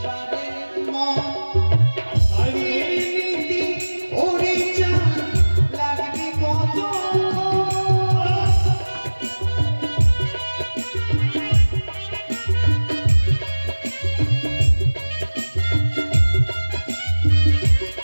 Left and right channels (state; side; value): inverted; both; correlation -1.00